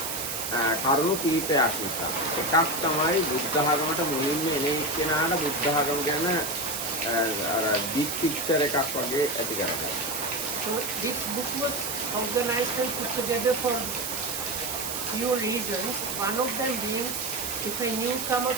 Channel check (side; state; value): right; noise; hiss, 4 dB below the sound